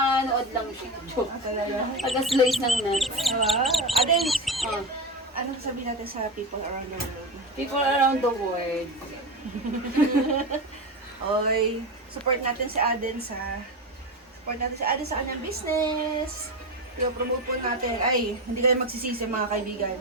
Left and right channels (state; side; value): normal; both; correlation 0.20